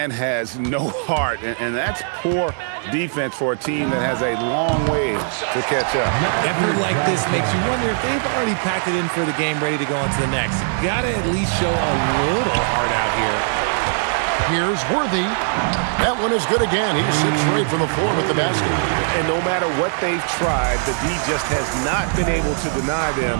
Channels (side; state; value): left; silent; digital silence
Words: has no heart, and that's poor defense for a team that has a long way to catch up. Effort like this makes you wonder if they've already packed it in for the game, ready to go on to the next. Gotta at least show a little heart out here. Here's Worthy. That one is good again. He sits straight from the floor with the basket. And no matter what they've tried, the D just has not been able to deny them